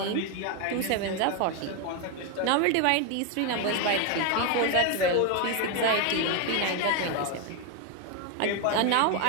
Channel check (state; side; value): different; both; correlation 0.01